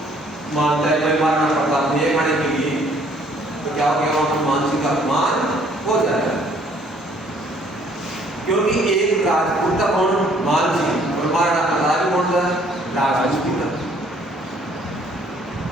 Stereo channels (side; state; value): both; normal; correlation 0.61